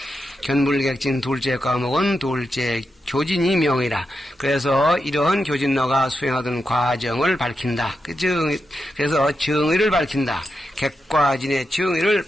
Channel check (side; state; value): both; normal; correlation 0.87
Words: 견불객진 둘째 과목은 둘째 교진이 명이라. 그래서 이러한 교진너가 수행하던 과정을 밝힌다. 그래서 정의를 밝힌다. 객과진의 정의를